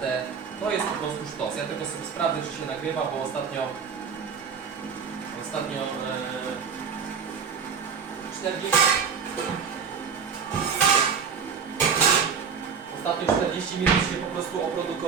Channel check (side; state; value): left; quieter; 6.3 dB